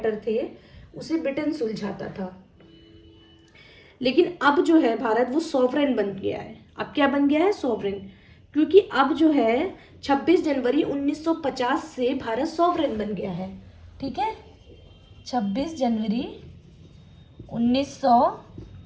थे उसे ब्रिटेन सुलझाता था। लेकिन अब जो है भारत वो सॉवरेन बन गया है। अब क्या बन गया है? सॉवरेन। क्योंकि अब जो है 26 जनवरी 1950 से भारत सॉवरेन बन गया है। ठीक है, 26 जनवरी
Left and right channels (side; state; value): both; identical; correlation 1.00